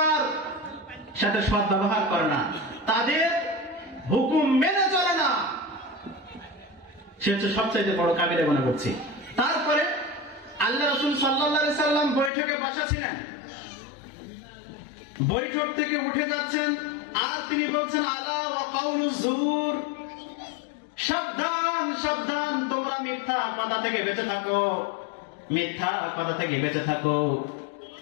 সাথে সৎ ব্যবহার করে না, তাদের হুকুম মেনে চলে না, সে হচ্ছে সবচাইতে বড় কাবিরা গুনাহ করছে। তারপরে আল্লাহ রাসূল সাল্লাল্লাহু আলাইহি সাল্লাম বৈঠকে বসা ছিলেন, বৈঠক থেকে উঠে যাচ্ছেন আর তিনি বলছেন আলা ওয়া কাউলুজ জুর, সাবধান সাবধান, তোমরা মিথ্যা কথা থেকে বেঁচে থাকো, মিথ্যা কথা থেকে বেঁচে থাকো।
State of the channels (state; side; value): drops out; right; at 12.3 s